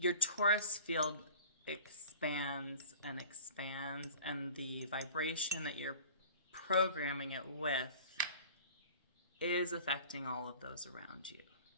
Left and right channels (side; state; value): both; inverted; correlation -0.43